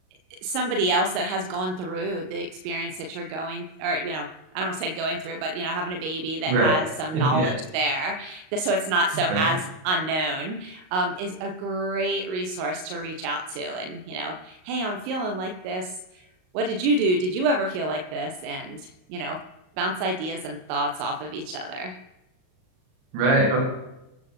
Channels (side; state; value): left; late; 38 ms